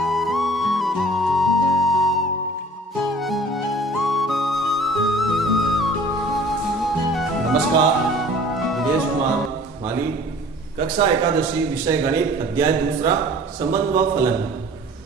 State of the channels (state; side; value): normal; both; correlation 0.48